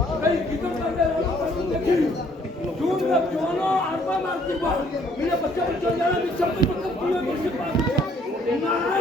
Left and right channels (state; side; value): normal; both; correlation 0.63